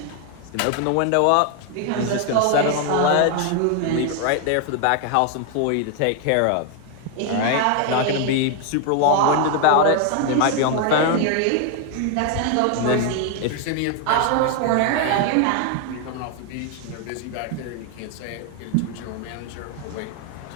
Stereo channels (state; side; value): different; both; correlation 0.00